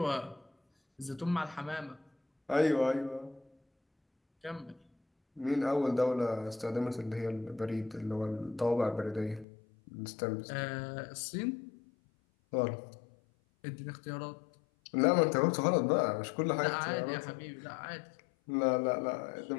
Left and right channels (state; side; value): drops out; right; at 9.5 s